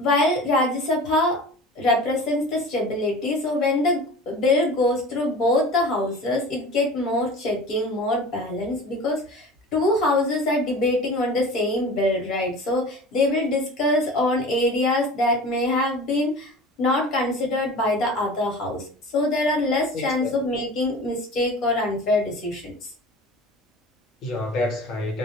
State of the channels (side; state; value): both; normal; correlation 0.38